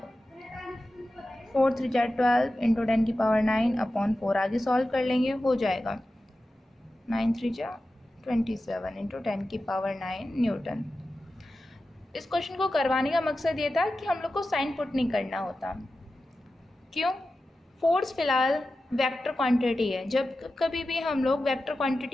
4 3 जा 12 इंटू 10 की पावर 9 अपॉन 4, आगे सॉल्व कर लेंगे, हो जाएगा 9 3 जा 27 इंटू 10 की पावर 9 न्यूटन। इस क्वेश्चन को करवाने का मकसद ये था कि हम लोग को साइन पुट नहीं करना होता। क्यों? फोर्स फिलहाल वेक्टर क्वांटिटी है। जब कभी भी हम लोग वेक्टर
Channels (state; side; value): normal; both; correlation 0.93